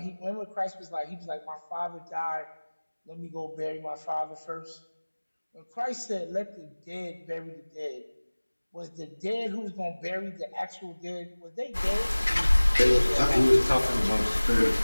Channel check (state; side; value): inverted; both; correlation -1.00